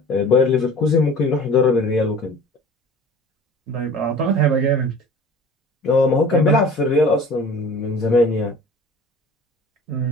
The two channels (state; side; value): normal; both; correlation 0.43